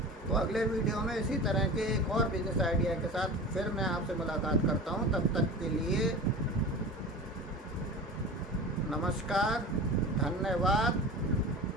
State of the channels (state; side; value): normal; both; correlation 0.33